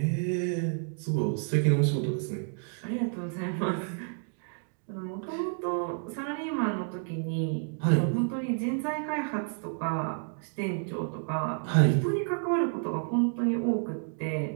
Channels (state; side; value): silent; left; 58 dB below the other